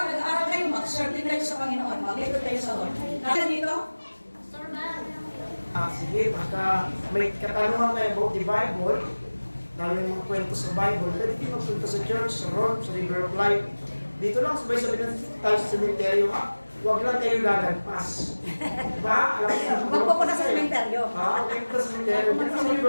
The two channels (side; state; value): both; inverted; correlation -1.00